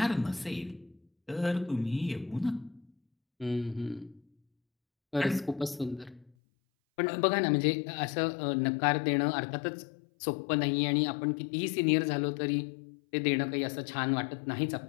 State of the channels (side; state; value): right; drops out; at 6.3 s